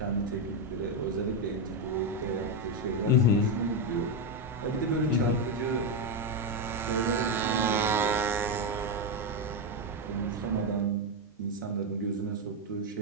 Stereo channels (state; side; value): normal; both; correlation 0.07